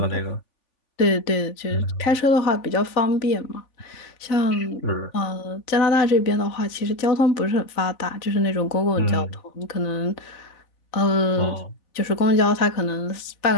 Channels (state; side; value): late; right; 3.4 ms